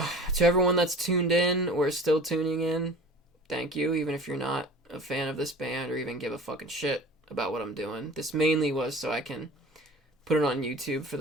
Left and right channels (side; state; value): both; normal; correlation 0.41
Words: everyone that's tuned in or still tuning in, thank you, even if you're not a fan of this band or even give a fucking shit about what I'm doing. This mainly was so I can put it on YouTube for